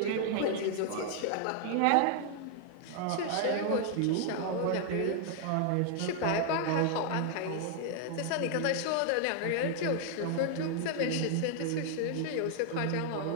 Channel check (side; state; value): both; different; correlation 0.00